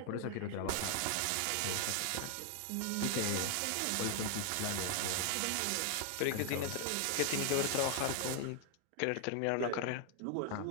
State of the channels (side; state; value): both; different; correlation 0.00